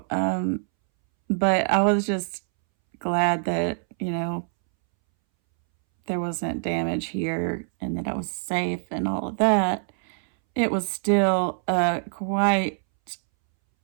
but I was just glad that, there wasn't damage here and that I was safe and all of that. It was still quite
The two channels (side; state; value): left; silent; 62 dB below the other